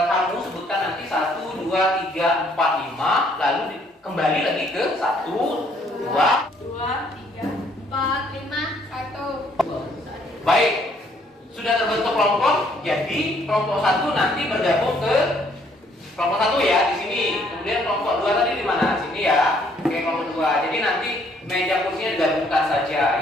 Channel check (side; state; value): both; normal; correlation 0.65